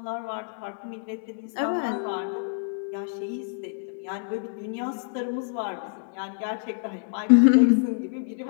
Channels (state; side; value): silent; right; digital silence